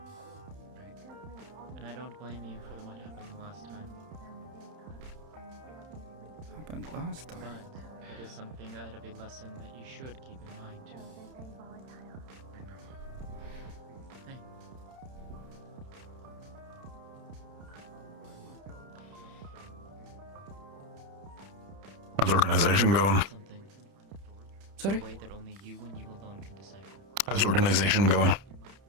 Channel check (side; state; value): left; late; 30 ms